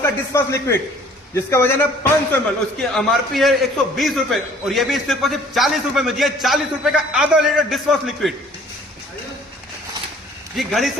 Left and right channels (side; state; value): both; normal; correlation 0.54